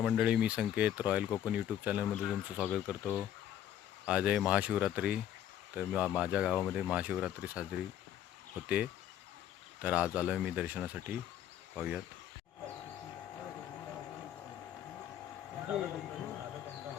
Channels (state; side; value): quieter; right; 10.8 dB